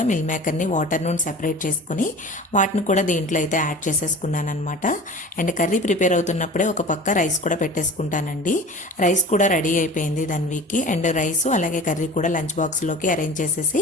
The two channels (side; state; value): both; normal; correlation 0.38